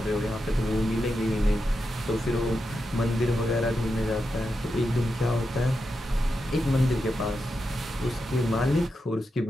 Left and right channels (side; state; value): both; normal; correlation 0.87